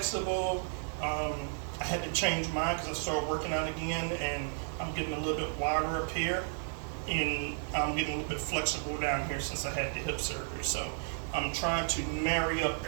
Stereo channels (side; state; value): left; silent; 56 dB below the other